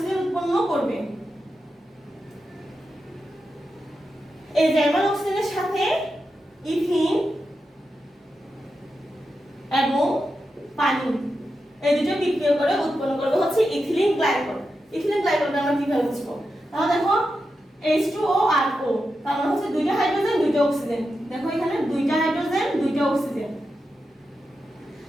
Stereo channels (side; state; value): both; normal; correlation 0.89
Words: উৎপন্ন করবে। এই জার্মান অক্সিজেনের সাথে ইথিন এবং পানি এই দুটো বিক্রিয়া করে উৎপন্ন করবে হচ্ছে ইথিলিন গ্লাইকল। ইথিলিন গ্লাইকলটা আমরা কিভাবে বুঝবো? তাহলে দেখো H2O আর O, তার মানে হচ্ছে দুইটা হাইড্রোজেন দুইটা অক্সিজেন। দেখো এখানে দুইটা হাইড্রোজেন দুইটা অক্সিজেন।